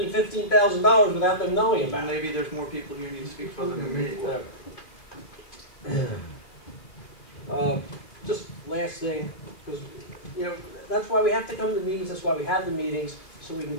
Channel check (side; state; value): right; late; 2.5 ms